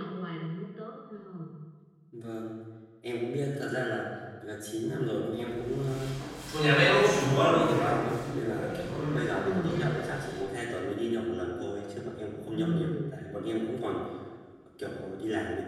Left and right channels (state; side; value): identical; both; correlation 1.00